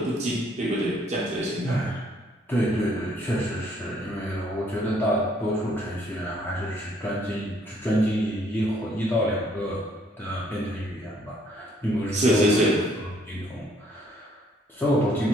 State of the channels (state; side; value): normal; both; correlation 0.65